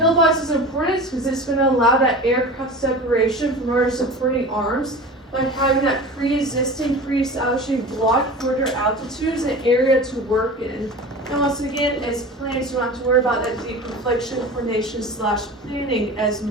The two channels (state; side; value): normal; both; correlation 0.34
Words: box is important because it's going to allow that aircraft separation from other supporting arms by having that pre-existing, pre-establishing block for their altitudes and area to work in. And once again, as planned, you don't have to worry about that deconfliction, coordination / planning as